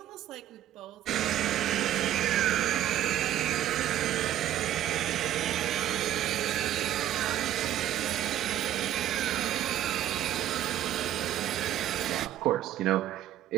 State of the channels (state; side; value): quieter; left; 12.2 dB